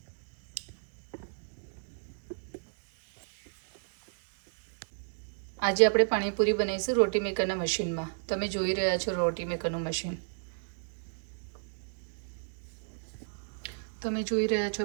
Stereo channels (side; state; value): left; silent; digital silence